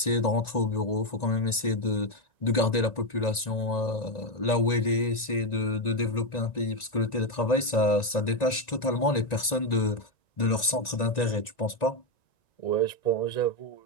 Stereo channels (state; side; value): late; right; 1.9 ms